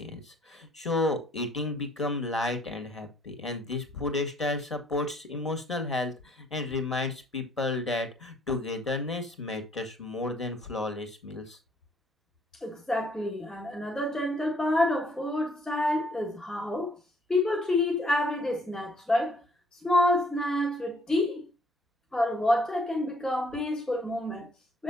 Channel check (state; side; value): normal; both; correlation 0.64